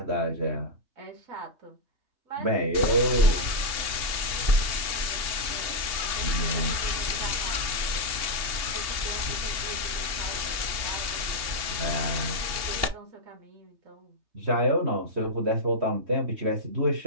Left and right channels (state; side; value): late; left; 3.3 ms